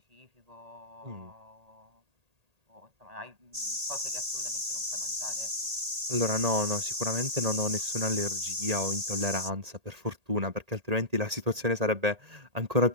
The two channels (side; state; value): left; late; 1.8 ms